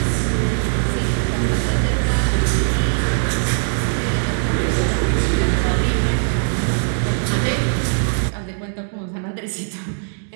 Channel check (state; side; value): silent; left; digital silence